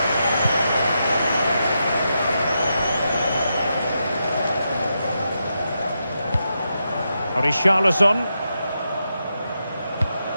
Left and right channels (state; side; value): inverted; both; correlation -0.85